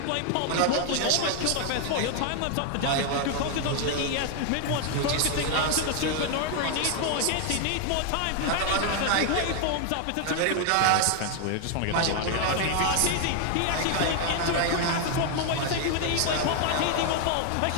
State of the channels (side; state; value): both; different; correlation 0.00